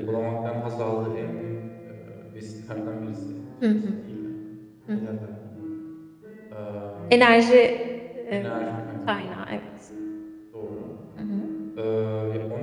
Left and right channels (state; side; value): identical; both; correlation 1.00